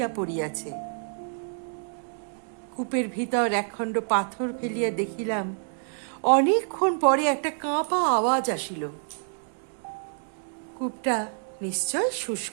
পড়িয়াছে। কূপের ভিতর একখণ্ড পাথর ফেলিয়া দেখিলাম অনেকক্ষণ পরে একটা কাঁপা আওয়াজ আসিল। কূপটা নিশ্চয়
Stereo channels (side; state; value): left; silent; 60 dB below the other